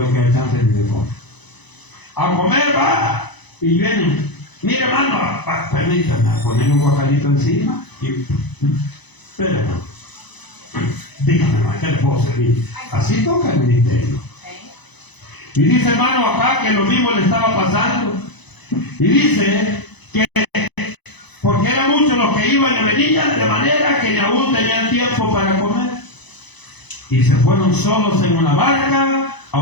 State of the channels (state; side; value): late; right; 1.0 ms